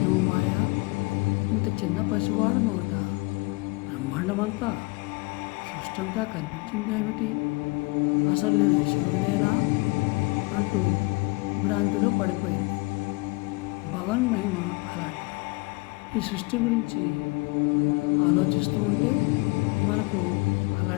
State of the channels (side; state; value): right; quieter; 26.0 dB